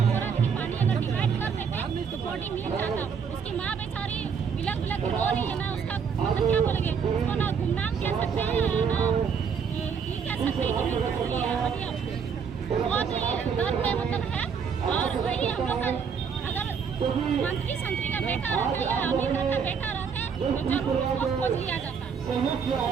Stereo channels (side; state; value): left; quieter; 6.5 dB